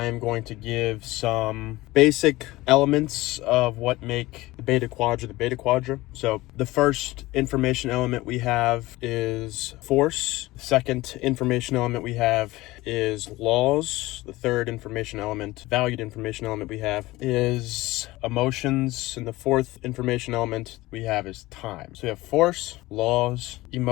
am going to give some basic elements of what make the Beta Quadra. So the first information element we have is force. The second information element we have is laws. The third valued information element we have is emotions. And the fourth information element we have is time. So we have force, laws,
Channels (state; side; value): quieter; right; 19.1 dB